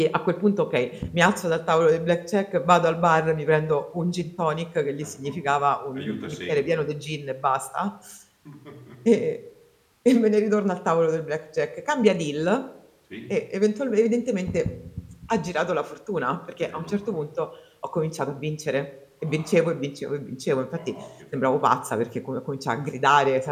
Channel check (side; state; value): both; identical; correlation 1.00